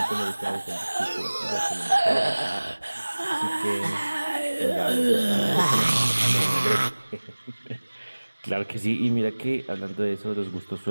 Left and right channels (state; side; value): inverted; both; correlation -1.00